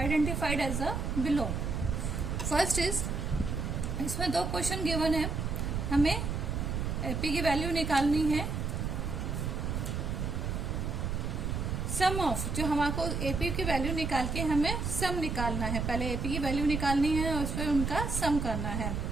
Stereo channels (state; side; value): noise; right; rumble, 2 dB below the sound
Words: as the below। First is, इसमें दो क्वेश्चन गिवन है, हमें AP की वैल्यू निकालनी है। सम ऑफ, जो हमको एपी की वैल्यू निकाल के हमें सम निकालना है। पहले एपी की वैल्यू निकालनी है और उस पर उनका सम करना है।